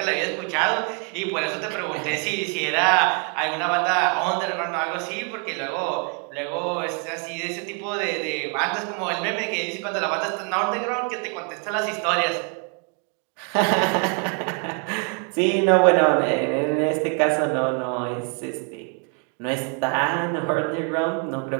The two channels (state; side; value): quieter; left; 36.8 dB